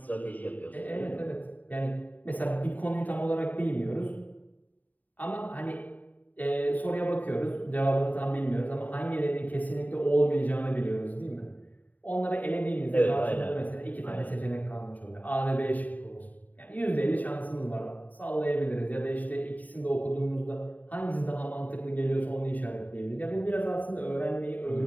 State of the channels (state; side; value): late; right; 0.078 ms